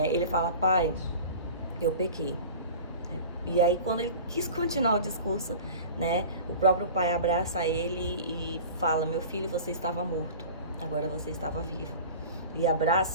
ele fala: pai, eu pequei. E aí, quando ele quis continuar o discurso, né, o próprio pai abraça ele e fala: meu filho, você estava morto, agora você estava vivo. E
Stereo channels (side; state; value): both; inverted; correlation -0.38